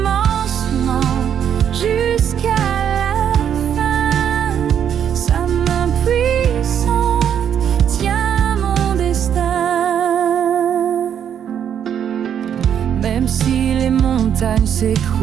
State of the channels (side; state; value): left; quieter; 8.9 dB